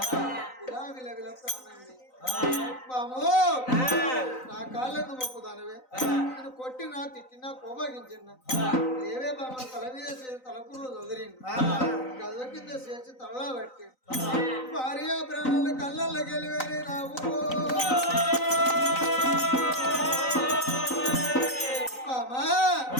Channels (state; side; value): late; right; 3.9 ms